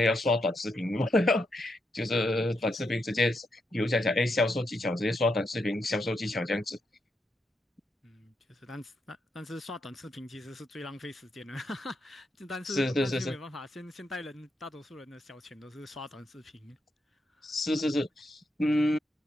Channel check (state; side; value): normal; both; correlation 0.82